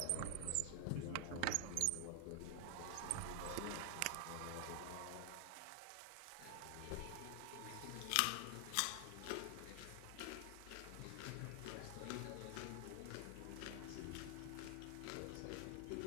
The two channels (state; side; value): different; both; correlation 0.00